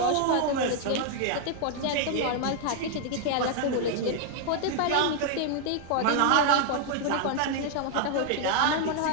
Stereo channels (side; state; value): both; different; correlation 0.00